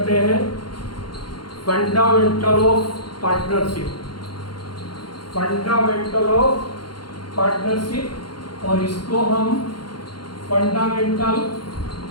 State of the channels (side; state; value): right; late; 0.72 ms